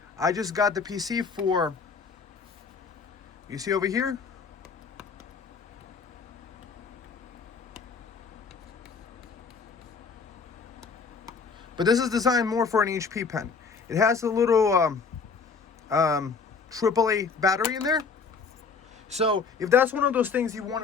I just got the PC for, you see over here? But this is designed more for an HP pen. It has a little AAA battery in there. So if that's one of those things you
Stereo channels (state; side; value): quieter; right; 5.2 dB